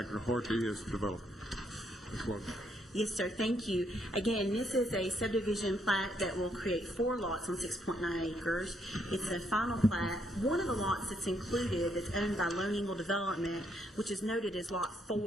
Horty is the developer. Ms. Logan. Yes, sir. Thank you. Again, this is a subdivision plat that will create 4 lots on 6.9 acres. It's a final plat. One of the lots that's included that's owned by Lone Eagle Development, which is noted as Lot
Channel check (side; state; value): both; normal; correlation 0.74